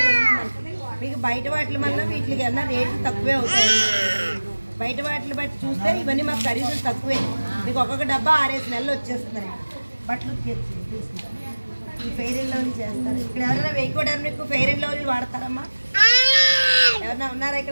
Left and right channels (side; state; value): both; inverted; correlation -1.00